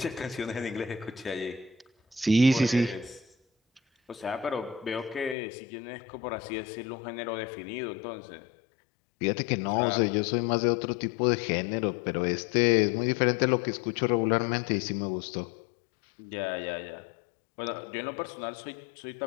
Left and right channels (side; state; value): right; drops out; at 5.4 s